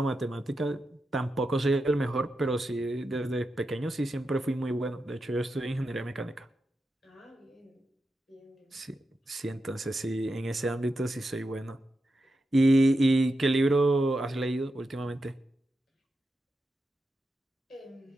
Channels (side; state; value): both; normal; correlation 0.88